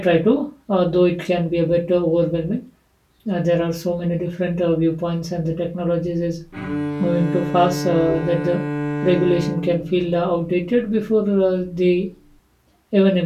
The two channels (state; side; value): identical; both; correlation 1.00